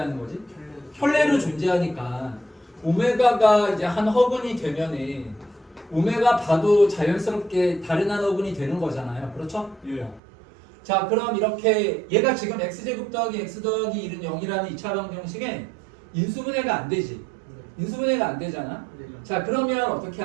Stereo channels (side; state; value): left; drops out; at 10.2 s